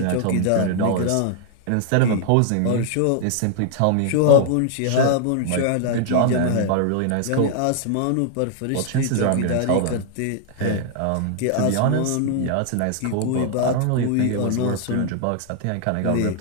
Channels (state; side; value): different; both; correlation 0.00